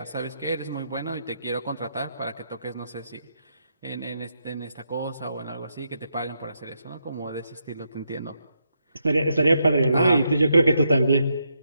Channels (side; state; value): both; inverted; correlation -0.80